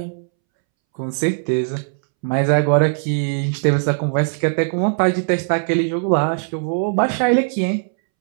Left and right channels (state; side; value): silent; left; 66 dB below the other